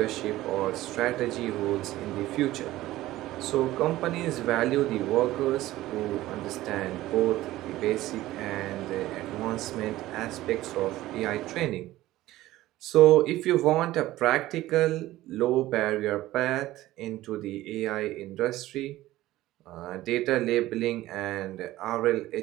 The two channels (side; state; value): left; quieter; 16.1 dB